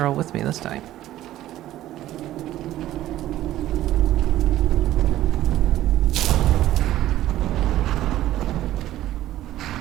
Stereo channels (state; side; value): quieter; left; 14.0 dB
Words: all with me this time.